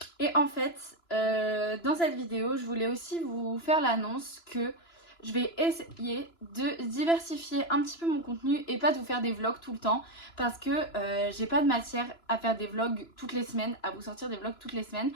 Et en fait, dans cette vidéo, je voulais aussi vous faire l'annonce que je vais essayer de diversifier un petit peu mon contenu et pas de vous faire des vlogs tout le temps parce que j'ai pas de matière à faire des vlogs toutes les semaines, à vous sortir des vlogs toutes les semaines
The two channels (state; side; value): late; right; 2.9 ms